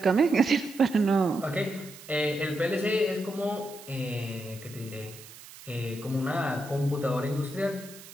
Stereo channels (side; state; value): right; noise; hiss, 18 dB below the sound